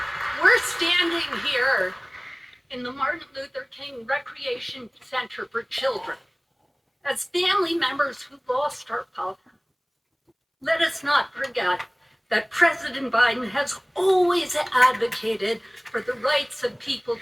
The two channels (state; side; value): identical; both; correlation 1.00